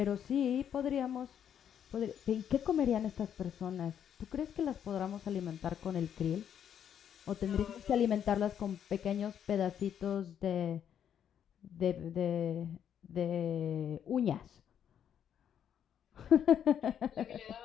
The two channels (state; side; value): quieter; right; 9.0 dB